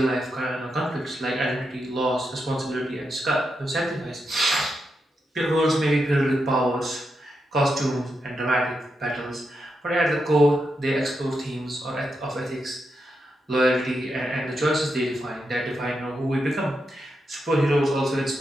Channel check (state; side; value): normal; both; correlation 0.85